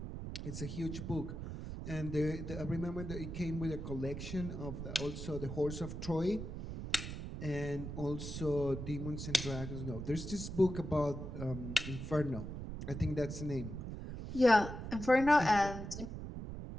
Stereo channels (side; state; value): right; noise; rumble, 7 dB below the sound